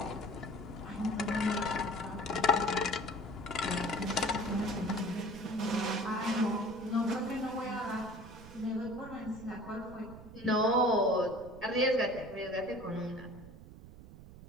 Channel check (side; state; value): right; noise; rumble, 17 dB below the sound